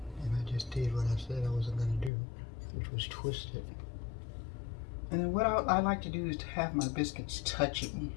And I just did what I said I wasn't going to do, which was twist it. And then what I like to do is to have my biscuits touching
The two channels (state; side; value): drops out; right; at 2.1 s